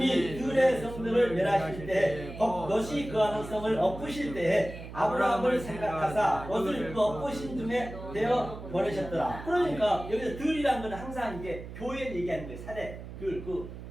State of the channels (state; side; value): noise; right; hum, 12 dB below the sound